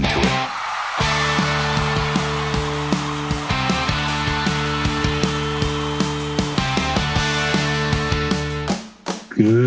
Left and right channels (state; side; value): identical; both; correlation 1.00